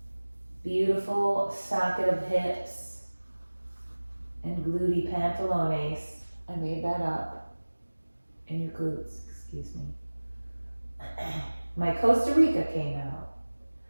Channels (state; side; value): inverted; both; correlation -1.00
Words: beautiful socket of hips and gluty pantalones. I made that up. In your glutes, excuse me. My Costa Rica came out.